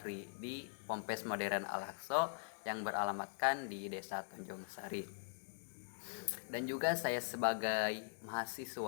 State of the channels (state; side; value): silent; right; digital silence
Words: di Pompes Modern Al-Aqsa yang beralamatkan di Desa Tanjung Sari. Dan juga saya sebagai